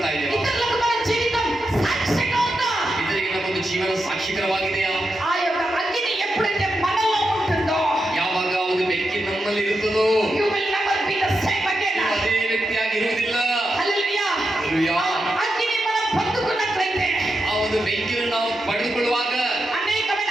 ಇದ್ದೇವೆ. ఇతరులకు మన జీవితం సాక్ష్యంగా ఉందా? ಇದರಿಗೆ ನಮ್ಮೊಂದು ಜೀವನ ಸಾಕ್ಷಿಕರವಾಗಿದೆಯಾ? ఆ యొక్క అగ్ని ఎప్పుడైతే మనలో ఉంటుందో ಯಾವಾಗ ಒಂದು ಬೆಂಕಿ ನಮ್ಮಲ್ಲಿ ಇರುತ್ತದೋ you will never be the same again. ಅದೇ ವ್ಯಕ್ತಿಯಾಗಿ ಇರುವುದಿಲ್ಲ. హల్లెలూయా. Hallelujah. అగ్ని మనం పొందుకున్నట్లయితే ಆ ಒಂದು ಬೆಂಕಿಯನ್ನು ನಾವು ಪಡೆದುಕೊಳ್ಳುವಾಗ అనేకమైన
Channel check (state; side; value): normal; both; correlation 0.87